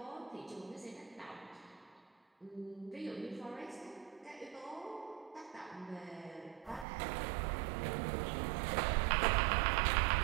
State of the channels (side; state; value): left; drops out; at 6.9 s